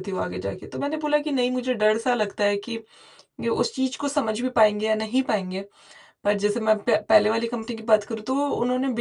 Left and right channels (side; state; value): both; identical; correlation 1.00